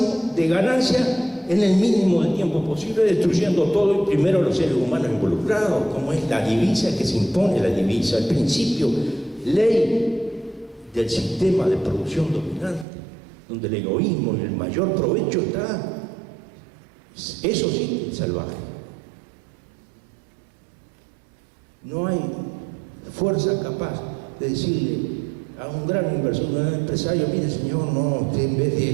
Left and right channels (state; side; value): drops out; left; at 12.9 s